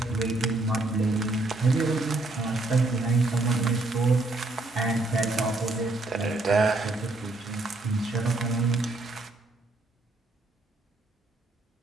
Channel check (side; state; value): left; quieter; 3.0 dB